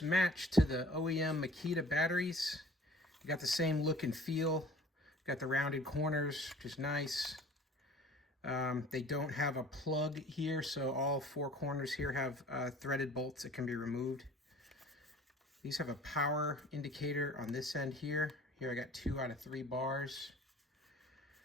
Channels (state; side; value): normal; both; correlation 0.48